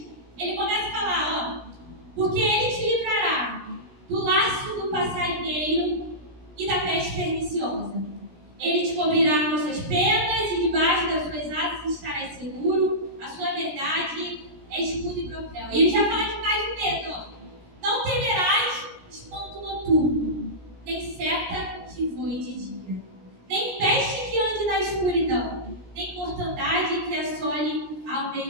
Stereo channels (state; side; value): late; left; 17 ms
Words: ele começa a falar, porque ele te livrará do laço do passarinheiro e da peste perniciosa. Ele te cobrirá com suas penas e debaixo das suas asas estarás seguro. A sua verdade é escudo e broquel. E ele já fala demais de medo. Não temerás espanto noturno, nem seta que voe de dia, nem peste que ande na escuridão, nem mortandade que assole ao